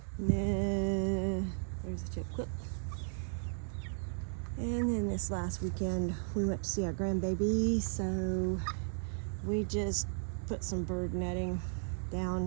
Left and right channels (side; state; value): left; silent; digital silence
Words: and then there's a chip clip. And then this last weekend we went to see our grandbaby, so we just put some bird netting down